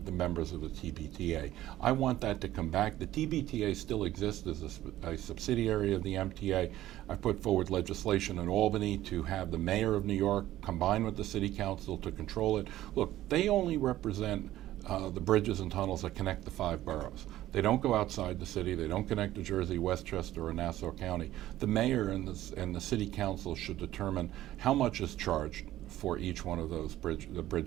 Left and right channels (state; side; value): quieter; left; 14.3 dB